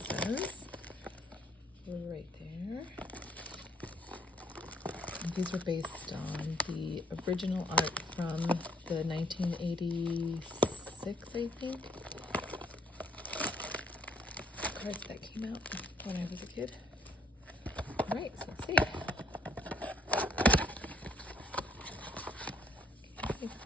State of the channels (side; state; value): both; normal; correlation 0.64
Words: says. Right there. And these are based on the original art from the 1986, I think, cards that came out when I was a kid. All right, so let's see. Okay.